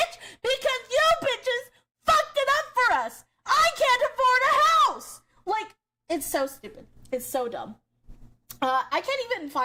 because you bitches fucked it up for us. I can't afford a house. Like, it's so stupid. It's so dumb. I can't even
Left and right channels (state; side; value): identical; both; correlation 1.00